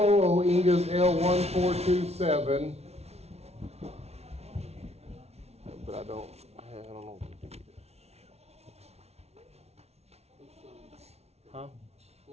Inga's L1427. But I don't know what to do. Huh?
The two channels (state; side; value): late; left; 0.31 ms